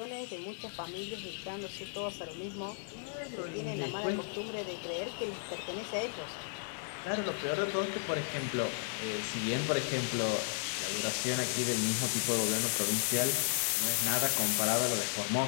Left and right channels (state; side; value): silent; right; digital silence